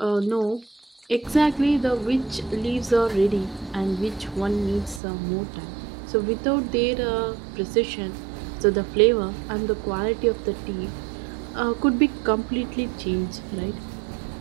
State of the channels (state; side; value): drops out; left; at 5.0 s